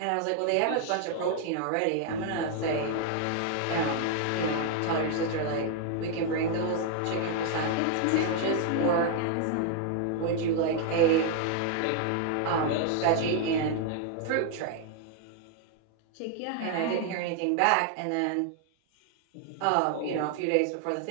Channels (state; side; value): different; both; correlation 0.00